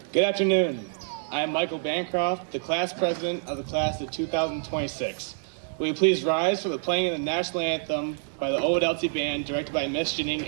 Good afternoon. I am Michael Bancroft, the class president of the class of 2026. Will you please rise for the playing of the national anthem by the Ovid-Elsie band directed by Miss Janine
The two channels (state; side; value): silent; left; 57 dB below the other